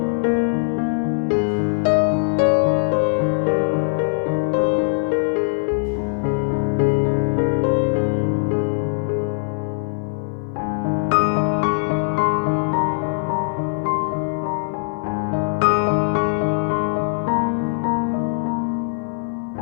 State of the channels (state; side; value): silent; right; digital silence